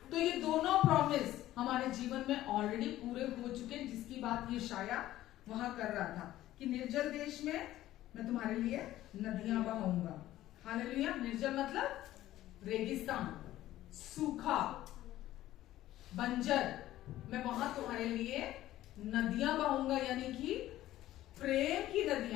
तो ये दोनों प्रॉमिस हमारे जीवन में ऑलरेडी पूरे हो चुके हैं, जिसकी बात ये शाया वहां कर रहा था कि निर्जल देश में मैं तुम्हारे लिए नदियां बहाऊंगा। हालेलुया। निर्जल मतलब रेगिस्तान, सूखा, बंजर, मैं वहां तुम्हारे लिए नदियां बहाऊंगा, यानी कि प्रेम की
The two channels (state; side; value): quieter; right; 14.5 dB